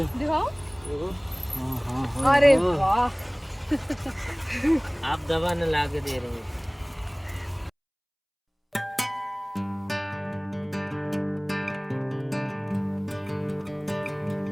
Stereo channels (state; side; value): identical; both; correlation 1.00